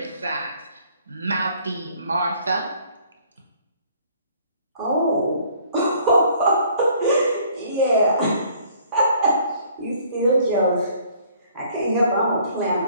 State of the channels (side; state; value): both; inverted; correlation -0.59